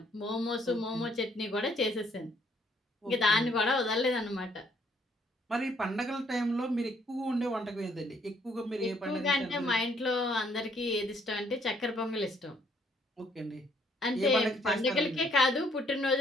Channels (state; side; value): normal; both; correlation 0.67